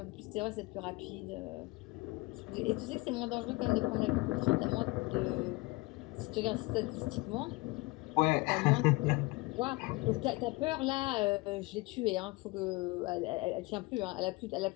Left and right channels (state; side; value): quieter; right; 23.8 dB